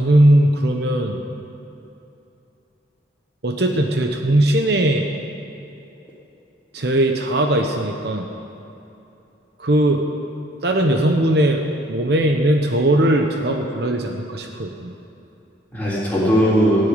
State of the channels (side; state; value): both; normal; correlation 0.64